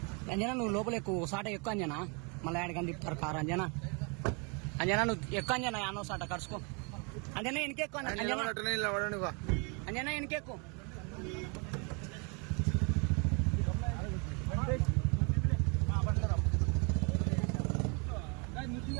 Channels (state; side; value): quieter; left; 33.7 dB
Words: అంజనా నువ్వు లోపల ఎక్కువ సాట ఎక్కువ అంజనా. మళ్ళీ ఆడికని తిప్పుతారు కారు. అంజనా నువ్వు ఎక్కువ అంజనా. యానో సాట కరుసుకో అంజనా. ఎనికెక్కువ అంజనా ఎనికెక్కువ.